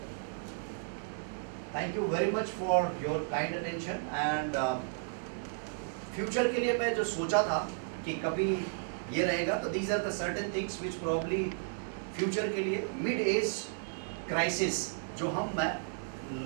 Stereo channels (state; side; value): silent; left; digital silence